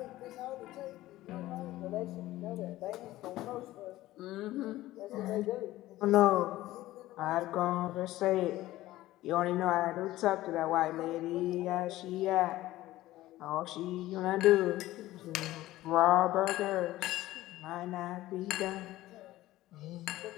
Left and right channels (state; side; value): quieter; right; 16.2 dB